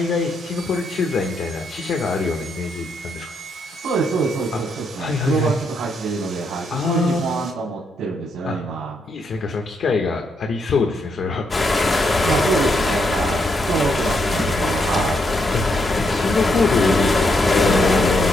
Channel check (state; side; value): normal; both; correlation 0.78